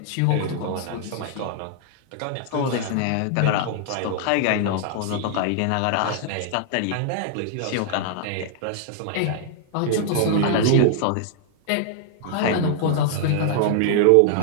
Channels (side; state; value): both; different; correlation 0.00